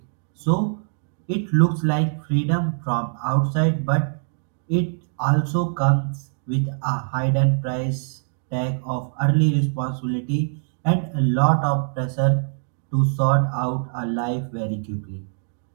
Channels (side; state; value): left; silent; digital silence